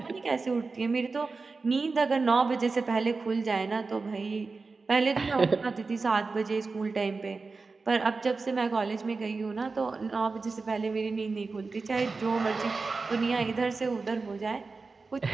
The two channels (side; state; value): left; quieter; 4.1 dB